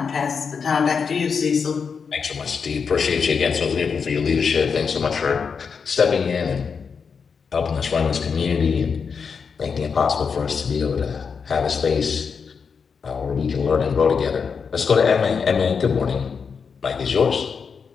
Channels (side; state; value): right; quieter; 5.9 dB